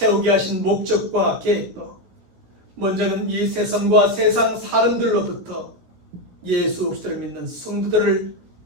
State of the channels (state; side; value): late; left; 17 ms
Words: 하신 목적과 계획도 먼저는 이 세상과 세상 사람들로부터 예수 그리스도를 믿는 성도들을